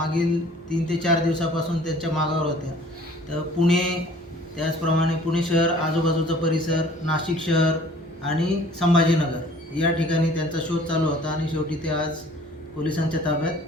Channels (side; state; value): both; normal; correlation 0.52